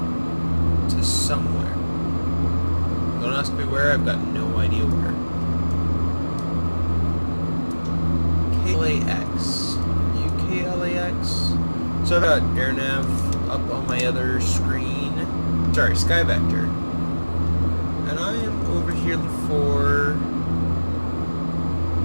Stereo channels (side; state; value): both; inverted; correlation -1.00